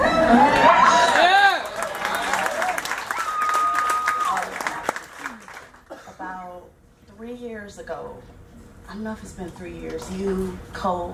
About 3 years ago, I don't know if it's been 3 years, you,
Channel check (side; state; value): both; identical; correlation 1.00